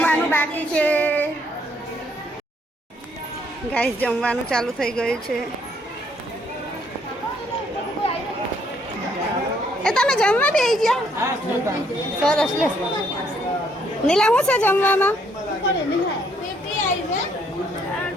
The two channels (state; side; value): normal; both; correlation 0.69